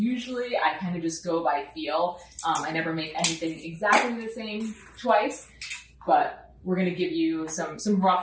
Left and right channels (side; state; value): both; identical; correlation 1.00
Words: I kind of just go by feel. I never make anything exactly the same twice, but we're going to give you some